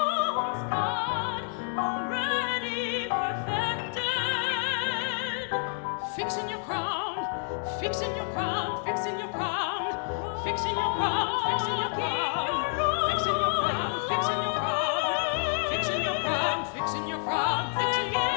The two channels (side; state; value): right; silent; 56 dB below the other